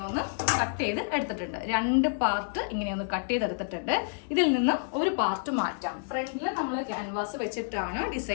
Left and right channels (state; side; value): silent; right; digital silence